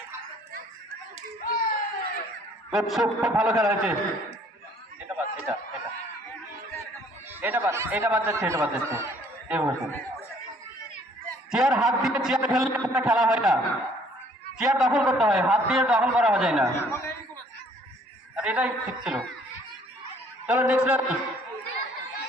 খুব ভালো খেলা হয়েছে। এটা বাদ, এটা এটা এটা বাদ, এটা বাদ যাচ্ছে, এটা বাদ যাচ্ছে। চেয়ার হাত দিয়ে চেয়ার খেললে কোনো খেলা হয় না, চেয়ার দখল করতে হয়, হাত দিয়ে দখল করা যায় না। আর এটাই ঠিক ছিল। চলো next ready,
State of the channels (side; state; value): both; normal; correlation 0.59